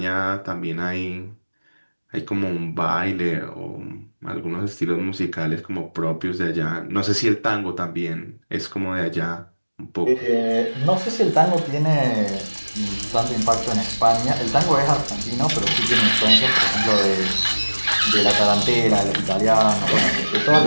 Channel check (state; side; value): inverted; both; correlation -1.00